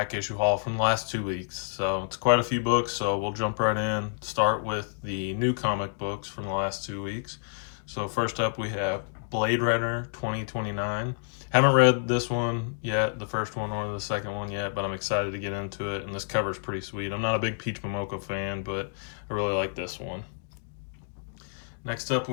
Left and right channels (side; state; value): right; silent; digital silence